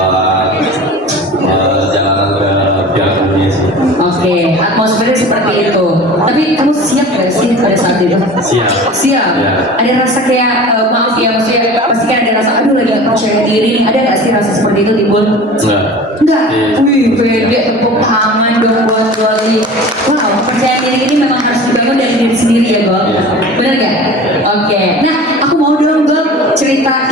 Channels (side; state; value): both; normal; correlation 0.39